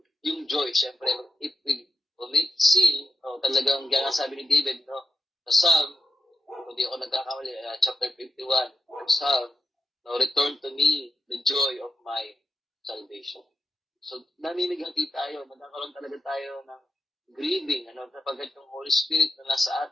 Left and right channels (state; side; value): normal; both; correlation 0.87